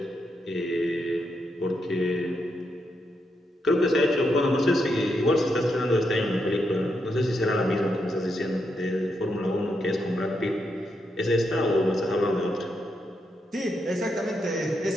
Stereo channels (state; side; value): normal; both; correlation 0.82